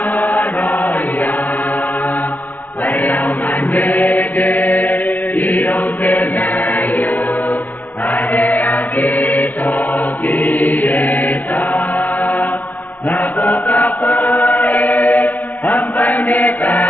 Waiau manege, iro te naio, ade akito kieta. Na boca pae, ampai ne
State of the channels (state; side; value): late; right; 0.079 ms